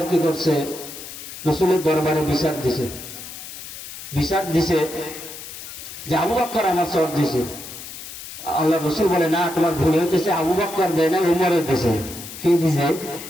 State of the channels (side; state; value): left; noise; hiss, 12 dB below the sound